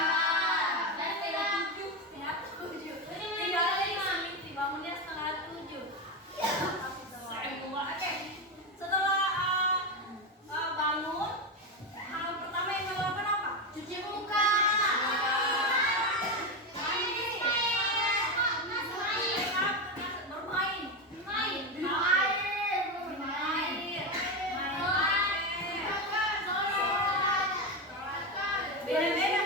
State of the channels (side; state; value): both; normal; correlation 0.13